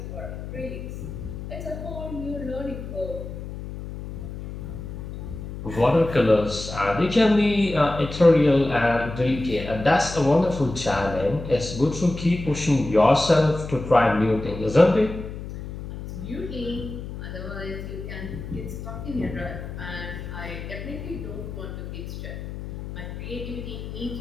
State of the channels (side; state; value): left; noise; hum, 9 dB below the sound